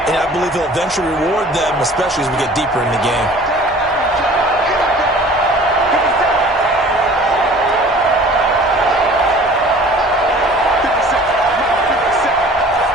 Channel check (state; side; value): normal; both; correlation 0.47